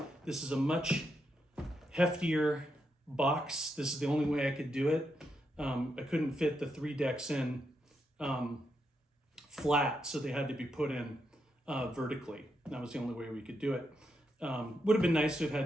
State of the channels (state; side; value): normal; both; correlation 0.82